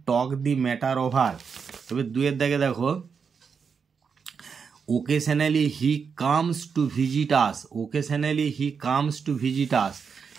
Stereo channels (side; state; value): left; quieter; 6.1 dB